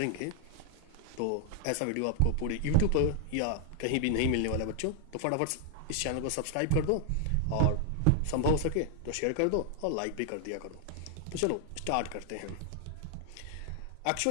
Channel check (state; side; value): different; both; correlation 0.00